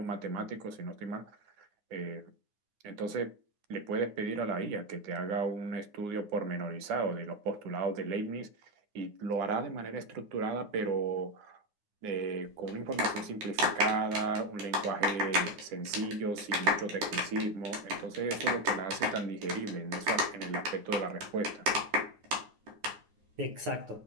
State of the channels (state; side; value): late; left; 9.6 ms